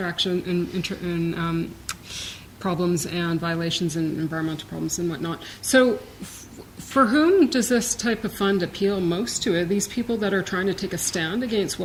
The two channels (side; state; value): both; identical; correlation 1.00